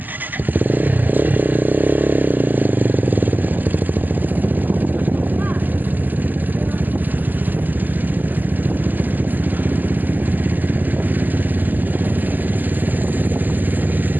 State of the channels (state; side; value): late; left; 0.086 ms